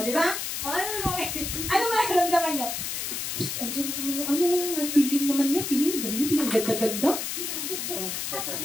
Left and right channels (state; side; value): noise; left; hiss, 3 dB below the sound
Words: di ba? O, ano mararamdaman nyo? Andiyan naman feeling naman niya, feeling ganda-ganda.